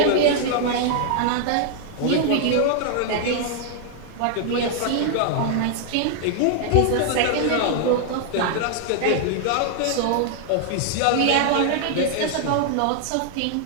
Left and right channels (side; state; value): both; different; correlation 0.00